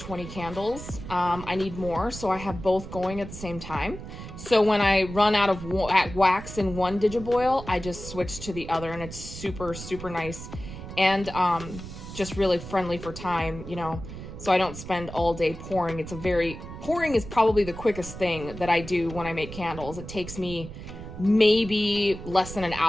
candles. I need more, so I have both going at the same time. So when I run out of wax in one Digiboil, I just switch to the other, and it's super, super nice. And just really friendly for time, you know, so I don't spend all day pouring. Pouring is probably the quickest thing that I do when I make candles. It takes me maybe less than an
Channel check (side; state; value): right; noise; rumble, 11 dB below the sound